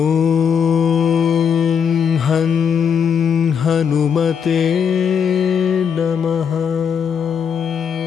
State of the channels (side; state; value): right; quieter; 7.1 dB